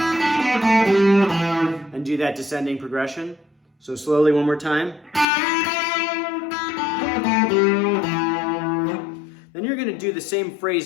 and do that descending progression. So slowly one more time. Then you're going to do the same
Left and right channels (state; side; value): drops out; right; at 5.2 s